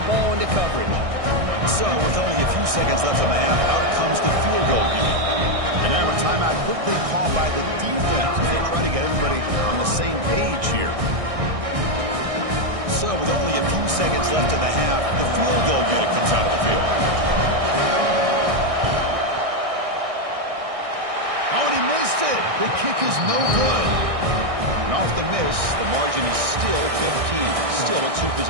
ball into coverage. So, with only a few seconds left in the half, out comes the field goal unit. And now a timeout quickly called by the defense as they try to get everybody on the same page here. So, with only a few seconds left in the half, the field goal unit comes out of the field. Oh, and he missed it. The kick is no good. And off the miss, the margin is still 15. Still a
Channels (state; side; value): late; left; 1.6 ms